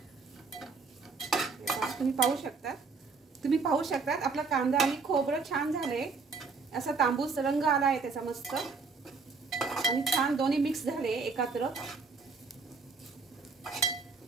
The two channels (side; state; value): left; quieter; 4.5 dB